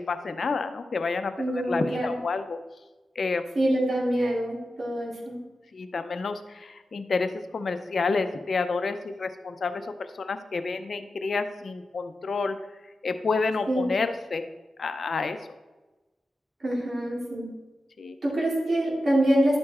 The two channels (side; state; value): both; normal; correlation 0.91